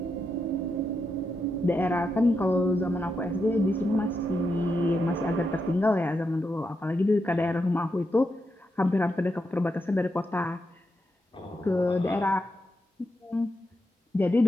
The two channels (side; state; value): both; normal; correlation 0.84